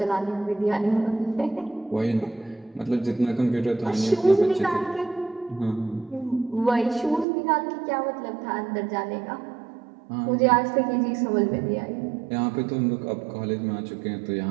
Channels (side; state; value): left; drops out; at 7.2 s